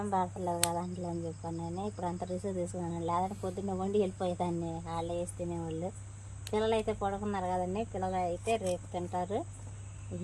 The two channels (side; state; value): both; identical; correlation 1.00